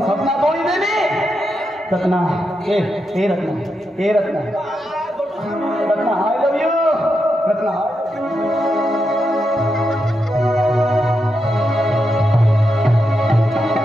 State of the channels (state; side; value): normal; both; correlation 0.85